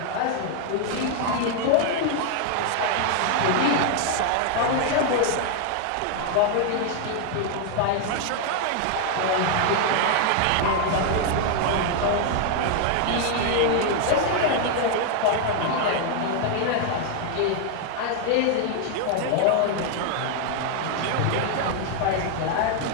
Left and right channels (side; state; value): both; different; correlation 0.00